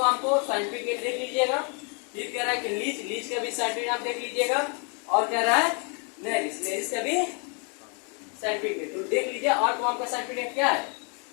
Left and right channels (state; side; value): quieter; right; 36.9 dB